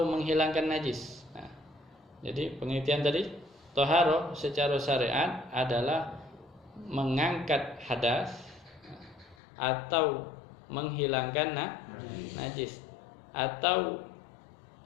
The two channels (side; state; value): right; drops out; at 9.3 s